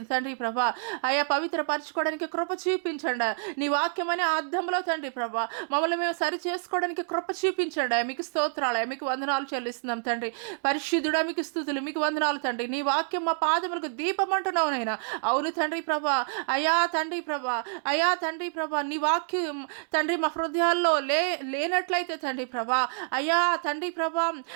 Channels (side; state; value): left; silent; digital silence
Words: తండ్రి ప్రభా అయ్యా పవిత్రపరచుకోవడానికి కృప చూపించండి. నీ వాక్యం అనే అర్థంలో తండ్రి ప్రభా మమ్మల్ని మేము సరి చేసుకోవడానికి కృప చూపించండి. మీకు స్తోత్రాలయ, మీకు వందనాలు చెల్లిస్తున్నాం తండ్రి. పరిశుద్ధుడా మీకు స్తుతులు, మీకు వందనాలు తండ్రి. నీ వాక్యం మా పాదములకు దీపం అంటున్నావు నైనా. అవును తండ్రి ప్రభా అయ్యా తండ్రి ప్రభా అయ్యా తండ్రి ప్రభా నీ వాక్యం తండ్రి మా హృదయాల్లో లేనట్లయితే తండ్రి ప్రభా అయ్యా తండ్రి ప్రభా